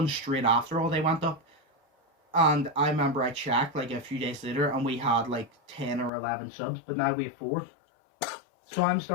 straight after all they went up. And I remember I checked like a few days later and we had like 10 or 11 subs, but now we have 4. So I'm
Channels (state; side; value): drops out; right; at 6.1 s